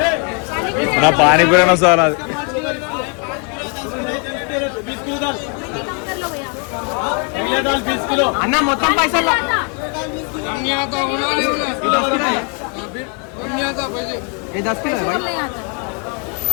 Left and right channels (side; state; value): right; quieter; 37.3 dB